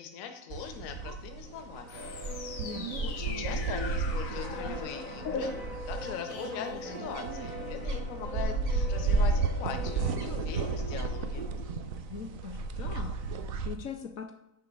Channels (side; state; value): right; late; 4.0 ms